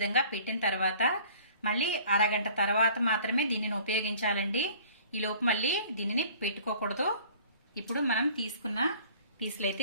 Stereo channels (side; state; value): both; inverted; correlation -0.50